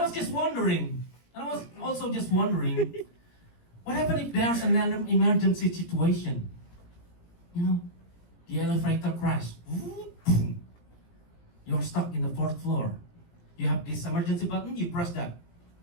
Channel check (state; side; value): late; right; 17 ms